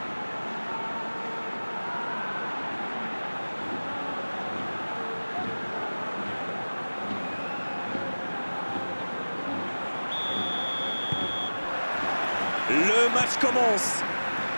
Le match commence.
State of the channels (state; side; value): inverted; both; correlation -1.00